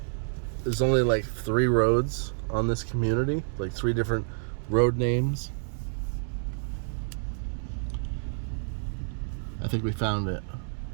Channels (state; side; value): silent; left; digital silence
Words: There's only like 3 roads on this community, like 3 different road names. I think we found it.